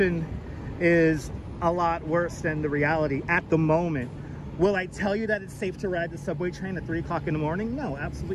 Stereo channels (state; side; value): identical; both; correlation 1.00